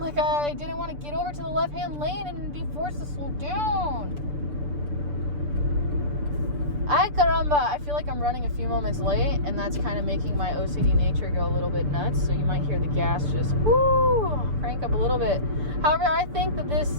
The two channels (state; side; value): late; left; 6.8 ms